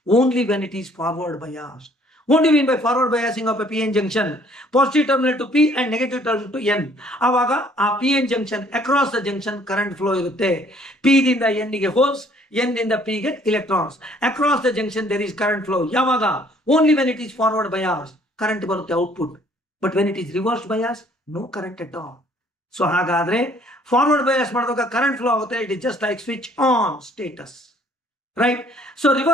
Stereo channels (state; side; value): normal; both; correlation 0.60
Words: only when it is forward bias. What do you mean by forward biasing of a PN junction? Positive terminal to P and negative terminal to N. ಆವಾಗ ಆ PN junction across the junction current flow ಇರುತ್ತೆ. P ದಿಂದ N ಗೆ holes, N ದಿಂದ P ಗೆ electrons. Across the junction there is current flow. ಯಾವಾಗ? Only when it is forward bias current ಬರುತ್ತೆ output. But when it is reverse bias, no current at all. So ಹಾಗಾದ್ರೆ forward bias ಮಾಡಿದಾಗ current flow ಆಗುತ್ತೆ. It is just like switch on status. Right? So